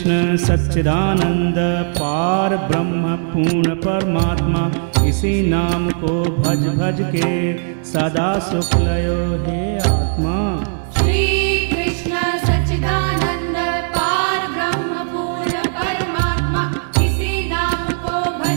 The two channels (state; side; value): silent; left; digital silence